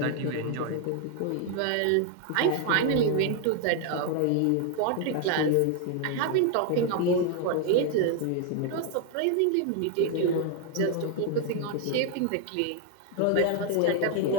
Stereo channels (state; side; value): different; both; correlation 0.00